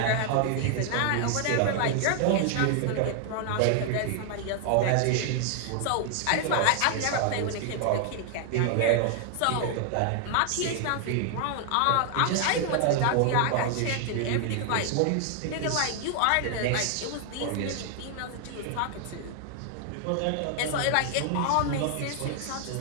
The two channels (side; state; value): both; different; correlation 0.00